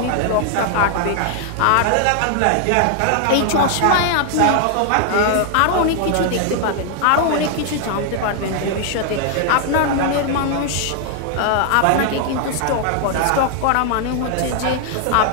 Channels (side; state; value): both; different; correlation 0.00